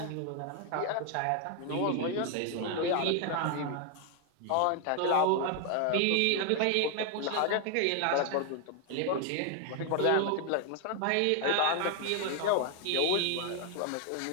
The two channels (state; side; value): different; both; correlation 0.00